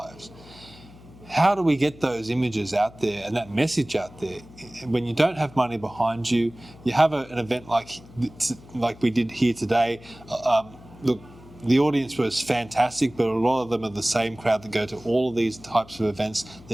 How do we get those images out there and that message out there? When you don't have money behind you, you have an event like we did here today. Look, the audience was fantastic, but a lot of them are the same crowd that go to all of these types of events.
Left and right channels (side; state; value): left; noise; hum, 21 dB below the sound